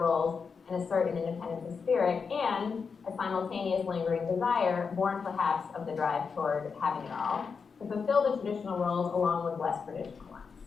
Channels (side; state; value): right; quieter; 5.5 dB